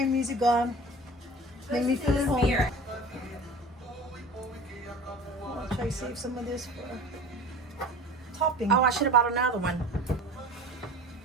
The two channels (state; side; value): normal; both; correlation 0.39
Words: music on. Make me feel at home. I'll try to save some of this for topping. Oh, I should have bought another one.